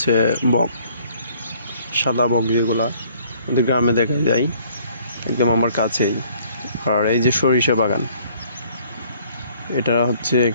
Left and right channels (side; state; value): both; inverted; correlation -0.60